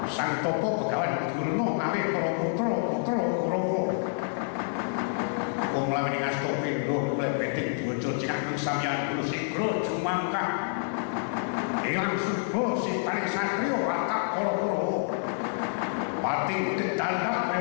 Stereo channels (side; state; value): right; silent; digital silence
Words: Sang Topo Begawan Durna ngawe para putra Kurawa. Wong laweni ngasta pindho mulai bedhing diwaca cekak sampeyan kulo sigra jumangkah. Ilang suba sitane satriya watak para Kurawa. Pati